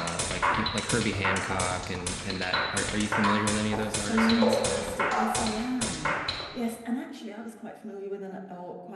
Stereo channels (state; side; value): identical; both; correlation 1.00